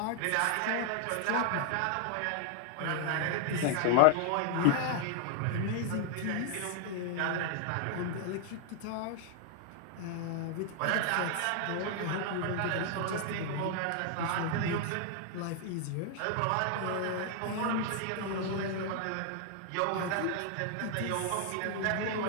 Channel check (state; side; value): different; both; correlation 0.00